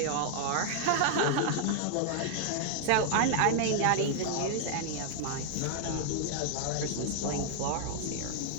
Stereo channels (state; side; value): different; both; correlation -0.01